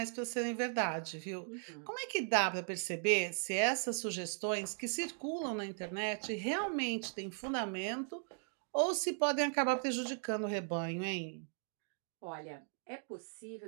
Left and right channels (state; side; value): silent; left; 52 dB below the other